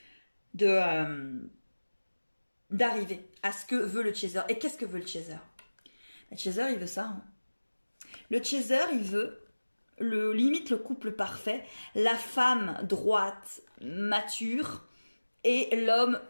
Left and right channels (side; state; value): both; inverted; correlation -1.00